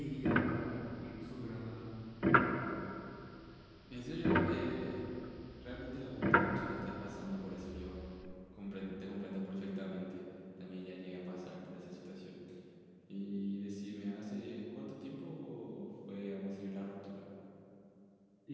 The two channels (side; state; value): both; identical; correlation 1.00